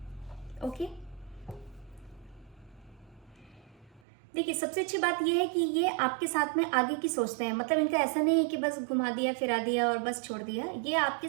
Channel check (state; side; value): drops out; left; at 4.0 s